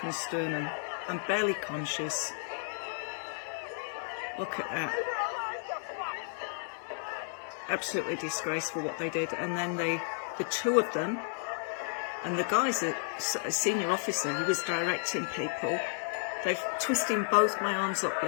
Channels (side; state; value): right; silent; digital silence